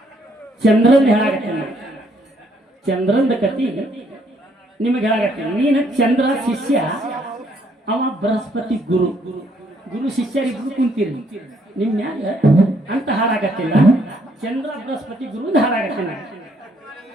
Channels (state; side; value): normal; both; correlation 0.69